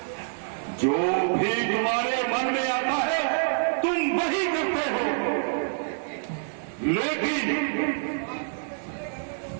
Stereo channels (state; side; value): silent; left; digital silence